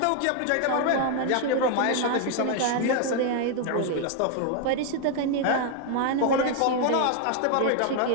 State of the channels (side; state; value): both; different; correlation 0.00